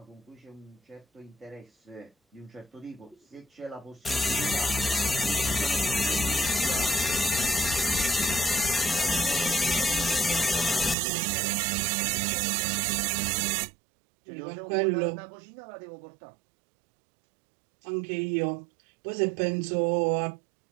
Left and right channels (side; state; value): left; drops out; at 11.0 s